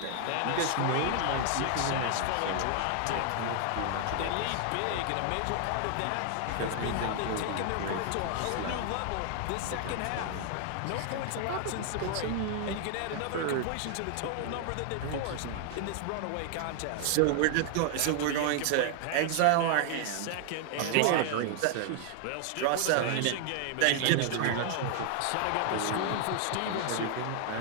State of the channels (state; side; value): different; both; correlation 0.00